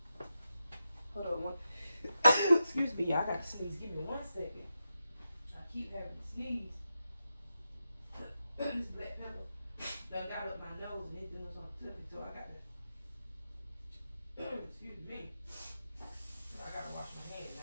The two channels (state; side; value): inverted; both; correlation -0.88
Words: Hold on one. Excuse me, y'all. I got to sneeze. Give me 1 second. I keep having to sneeze. This black pepper done got up my nose and it doing something to me, so I got to. Excuse me. So I got to wash my hands